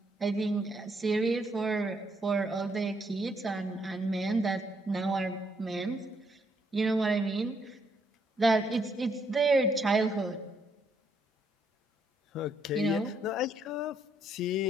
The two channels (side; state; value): both; normal; correlation 0.73